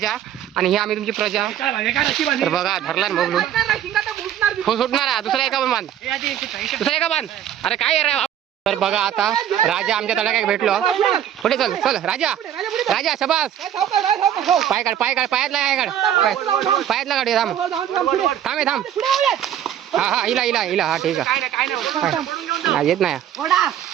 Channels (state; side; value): quieter; left; 10.6 dB